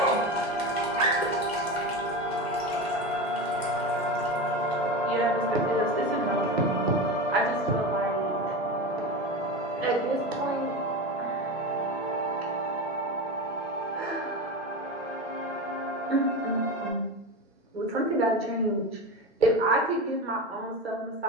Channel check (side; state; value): both; normal; correlation 0.23